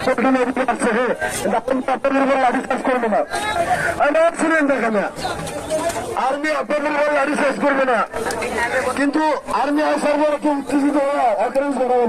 করবে না, শুনেন দেখেন আর্মি আপনাদের লাঠি শেষ করবে না, কিন্তু আর্মি আসার পরে কেউ উত্তেজিত হওয়া অকারেন্স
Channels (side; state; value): both; identical; correlation 1.00